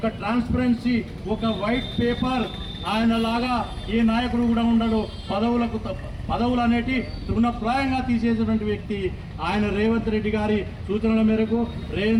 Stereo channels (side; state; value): both; identical; correlation 1.00